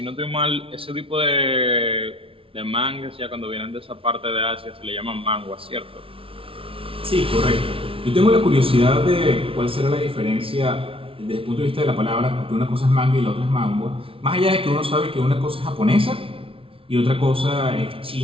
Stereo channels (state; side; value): late; left; 0.26 ms